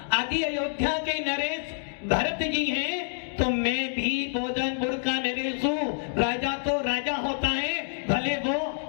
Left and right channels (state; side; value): silent; right; digital silence